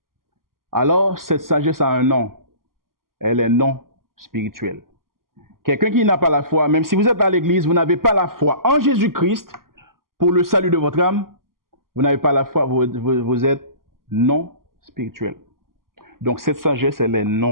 Alors, cette sagesse a un nom. Elle est non spirituelle. Quelqu'un qui n'a pas la foi, même si vous êtes à l'église, vous n'avez pas la foi en Jésus-Christ pour le salut de votre âme, vous n'avez pas la foi, vous êtes non spirituel. Donc cette sagesse, elle est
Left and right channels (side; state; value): left; late; 0.91 ms